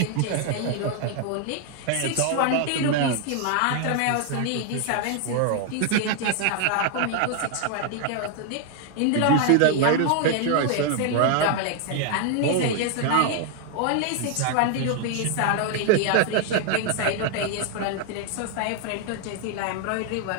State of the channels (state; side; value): different; both; correlation 0.00